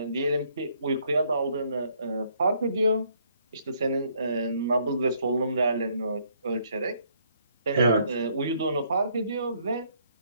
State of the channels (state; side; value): inverted; both; correlation -0.67